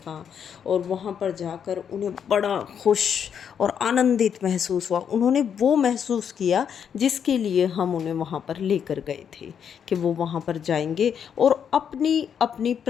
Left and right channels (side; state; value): right; quieter; 7.9 dB